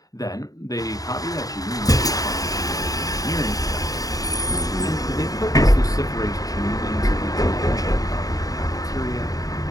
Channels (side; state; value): right; late; 0.18 ms